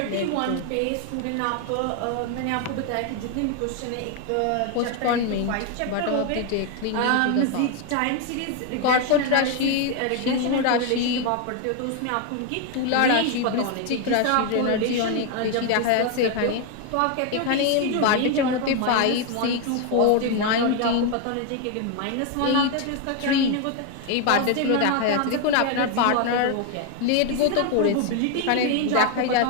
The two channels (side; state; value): both; different; correlation 0.01